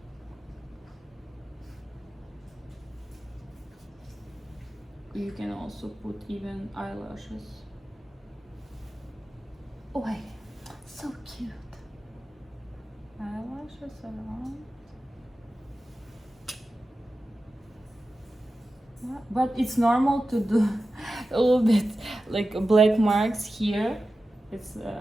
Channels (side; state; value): both; normal; correlation 0.93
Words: you can also put even eyelashes. Oh, so cute. Eyelashes around. Yeah, but it's normal to do a little bit like black marks here. It's